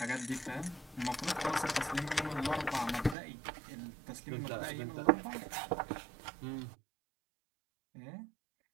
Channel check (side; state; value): left; drops out; at 3.2 s